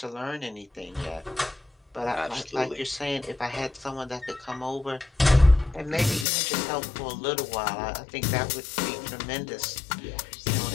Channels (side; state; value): right; drops out; at 6.2 s